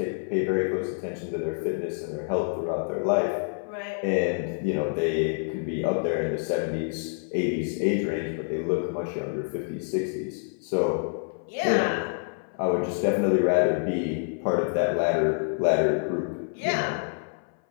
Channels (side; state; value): right; silent; 57 dB below the other